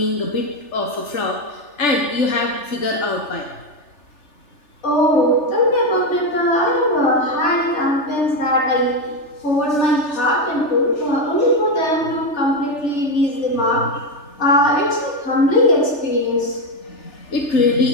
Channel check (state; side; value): late; right; 3.4 ms